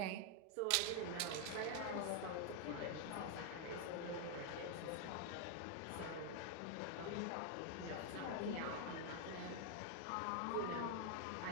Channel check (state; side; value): different; both; correlation 0.00